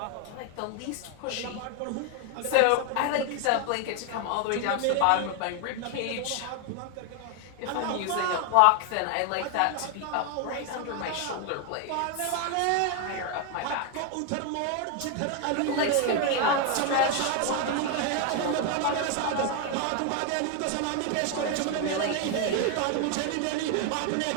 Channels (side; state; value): both; different; correlation 0.01